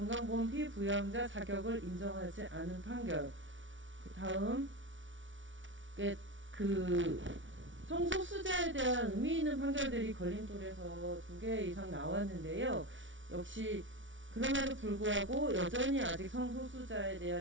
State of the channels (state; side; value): late; left; 0.56 ms